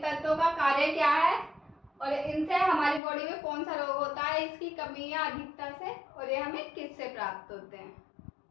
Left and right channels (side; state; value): right; drops out; at 3.0 s